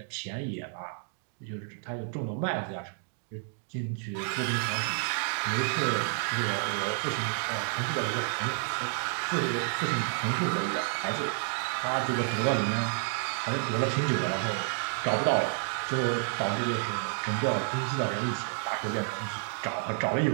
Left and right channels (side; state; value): left; silent; 58 dB below the other